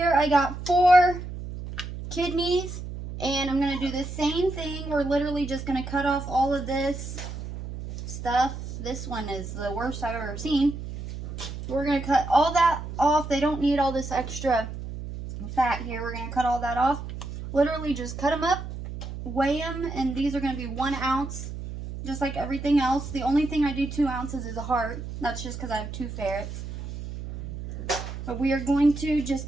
I got 4 kidneys, and I'm going to do the same thing. We're literally just going to cut off all of this stuff. This one is the worst I've ever seen. We're going to cut all that off. They don't need all this extra fat here. We're going to cut all that off. Literally just cut them up, weigh them, and these are going to be 1 ounce, just like everything else. The only thing I do 2 ounces is a heart. That's just because I have 2 ferrets. But we are going to just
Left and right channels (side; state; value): right; noise; hum, 8 dB below the sound